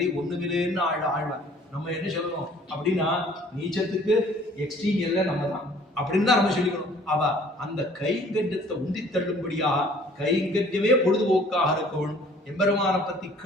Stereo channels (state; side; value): normal; both; correlation 0.54